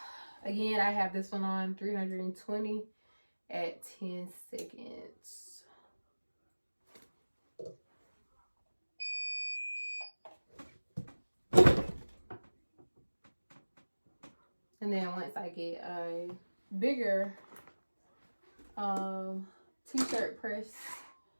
I have this one on 320 at 10 seconds. And then once I get a bigger t-shirt press,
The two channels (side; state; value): both; inverted; correlation -1.00